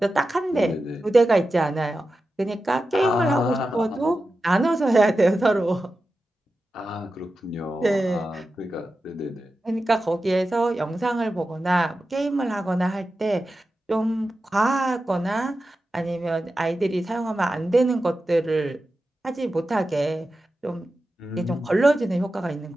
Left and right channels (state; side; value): normal; both; correlation 0.92